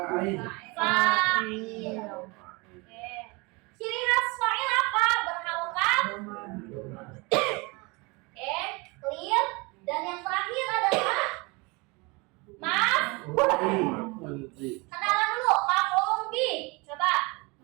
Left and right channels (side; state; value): left; quieter; 27.0 dB